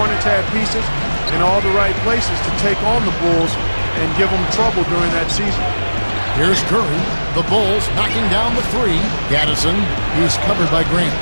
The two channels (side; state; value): both; inverted; correlation -1.00